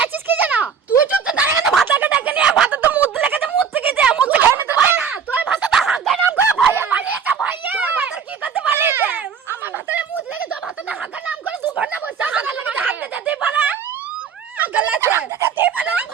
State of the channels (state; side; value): quieter; left; 6.8 dB